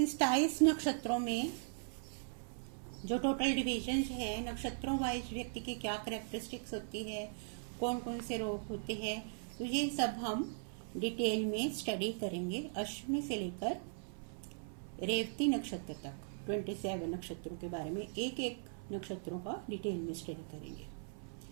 27 नक्षत्रों में जो टोटल डिविजन है, नक्षत्रों वाइज व्यक्ति की क्या कैरेक्टरिस्टिक्स होती है, कौन कौन से रोग होते हैं, तो ये सब हम डिटेल में स्टडी करेंगे। अश्विनी से लेकर रेवती नक्षत्र तक 27 नक्षत्रों के बारे में एक एक नक्षत्रों का डिटेल में स्टडी करेंगे।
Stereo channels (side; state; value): left; silent; 52 dB below the other